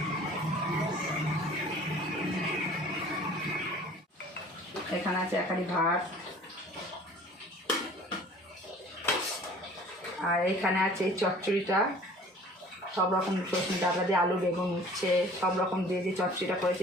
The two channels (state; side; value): normal; both; correlation 0.48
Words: এখানে আছে একারি ভাত, আর এইখানে আছে এই চচ্চড়িটা, সব রকম সজনে ডাটা দিয়ে আলু বেগুন উচ্ছে সব রকম দিয়ে যে চচ্চড়িটা করেছে